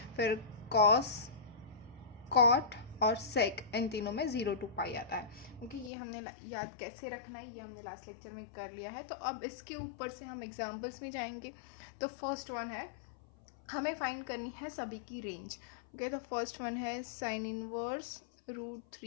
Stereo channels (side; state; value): right; drops out; at 5.9 s